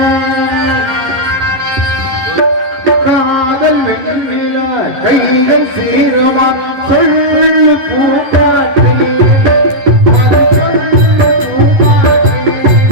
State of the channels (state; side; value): late; left; 11 ms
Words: காதல் வெண்ணில கைகள் சீரமா சொல்லு பூப்பாட்டை